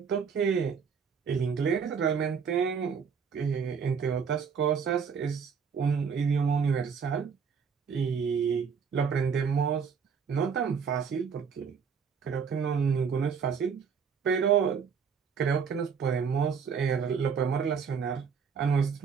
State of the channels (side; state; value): left; quieter; 6.3 dB